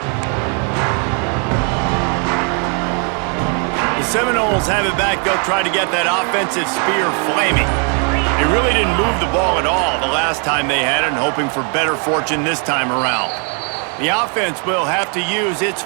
The Seminoles have it back. They'll try to get that offensive spear flaming. They really didn't move the ball at all the last time they had it, and hoping for better fortune this time around. The offense will have to use its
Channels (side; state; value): left; quieter; 39.7 dB